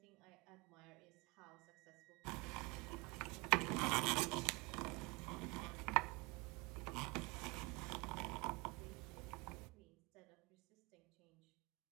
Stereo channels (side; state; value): left; quieter; 26.7 dB